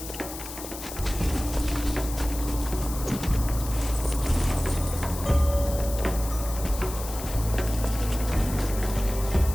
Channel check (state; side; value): noise; left; hiss, 11 dB below the sound